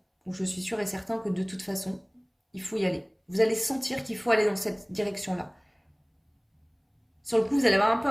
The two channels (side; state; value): both; identical; correlation 1.00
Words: ou je suis sûre et certain que de toute façon, il faut y aller. Vous allez sentir qu'il faut aller dans cette direction-là. Sur le coup, vous allez avoir un peu